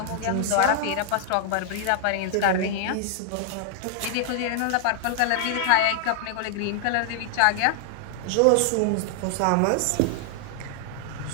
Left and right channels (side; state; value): both; different; correlation 0.00